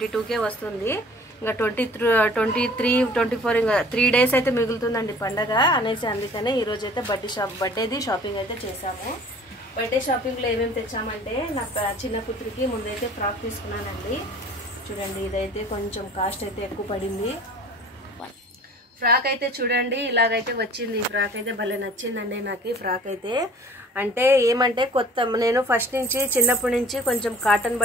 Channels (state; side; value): normal; both; correlation 0.48